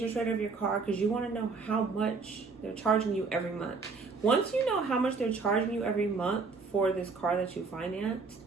rate of your car because you want to know how much they're charging you every month. Once you know how much they're charging you every month for this car that you financed,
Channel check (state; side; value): quieter; left; 4.5 dB